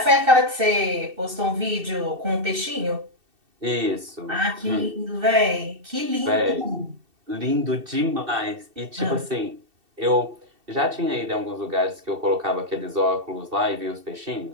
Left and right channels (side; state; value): left; late; 2.7 ms